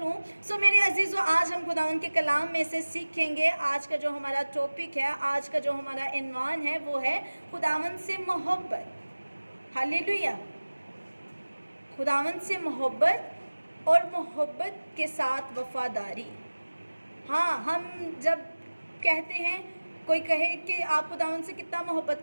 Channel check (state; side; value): inverted; both; correlation -1.00